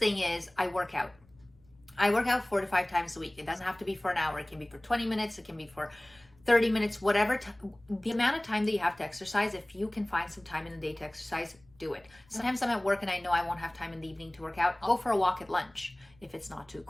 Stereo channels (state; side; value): noise; left; rumble, 30 dB below the sound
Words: is I work out. I work out 4 to 5 times a week. It doesn't have to be for an hour. It can be for 20 minutes. It can be for 30 minutes, whatever. The amount of time that you have to exercise, if you can find some time in the day to exercise, do it. Sometimes I'm at work and I know I won't have time in the evening to work out. I'll go for a walk at lunch, if it's not too